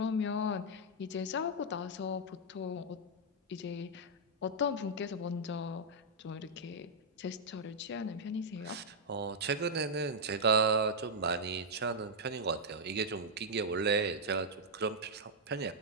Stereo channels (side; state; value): both; normal; correlation -0.05